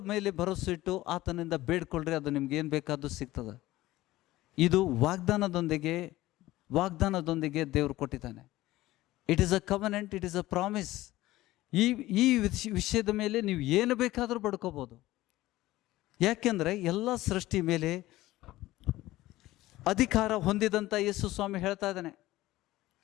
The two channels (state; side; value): quieter; right; 16.9 dB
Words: ಮೇಲೆ ಭರವಸೆ ಇಟ್ಟು ಆತನಿಂದ ಬೇಡ್ಕೊಳ್ರಿ, ಅದು ನಿಮ್ಗೆ ಏನು ಬೇಕಾದ್ದು ಸಿಗ್ತದೆ. ಇದು ವಾಗ್ದಾನದೊಂದಿಗೆ ದೇವರು ಕೊಟ್ಟಿದ್ದಾನೆ. It is a covenant, it is a promise. ಈ ವಿಷಯದ ಮೇಲೆ ನೀವು ಏನು ಬೇಕಾದರೂ ಬಡ್ಕೋಬೋದು. ಯಾಕೆಂದರೆ ಎಲ್ಲ ಸೃಷ್ಟಿ ಮೇಲೆ ಅಧಿಕಾರ ಹೊಂದಿದಂಥ ಯೇಸು ಸ್ವಾಮಿ ಹೇಳ್ತಾ ಇದ್ದಾನೆ.